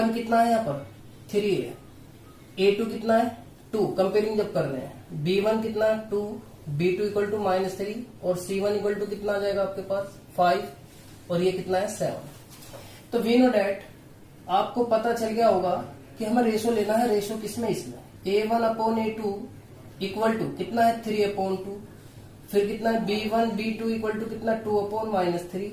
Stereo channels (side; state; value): both; identical; correlation 1.00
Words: कितना है यहाँ पर 3 है, A2 कितना है 2, कंपेयरिंग जब कर रहे हैं, B1 कितना है 2, B2 इक्वल टू -3 और C1 इक्वल टू कितना आ जाएगा आपके पास 5 और ये कितना है 7। तो वी नो डैट आपको पता चल गया होगा कि हमें रेशो लेना है। रेशो किसमें, इसमें A1 upon A2 equal to कितना है 3 अपॉन 2, फिर कितना है B1 B2 इक्वल टू कितना 2 upon -3